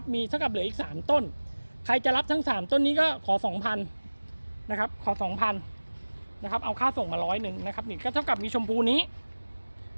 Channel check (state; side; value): inverted; both; correlation -1.00